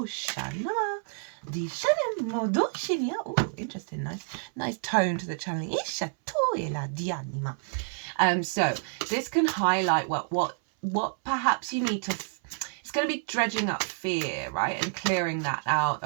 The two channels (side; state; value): left; silent; 59 dB below the other